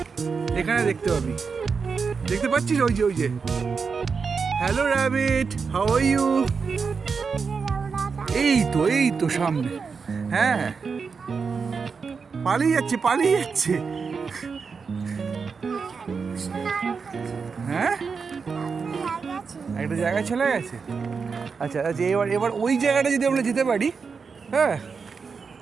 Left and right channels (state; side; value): quieter; left; 5.4 dB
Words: এখানে দেখতে পাবি। দেখতে পাচ্ছিস? ওই যে ওই যে। Hello rabbit, how are you? এই তো সামনে। হ্যাঁ, পালিয়ে যাচ্ছে পালিয়ে যাচ্ছে। হ্যাঁ, একটা জায়গায় চলে গেছে। আচ্ছা আচ্ছা, এবার ওই জায়গাটা যদি আমরা যেতে পারি। হ্যাঁ,